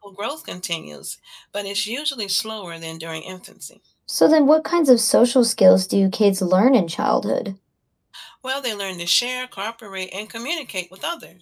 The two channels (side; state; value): both; identical; correlation 1.00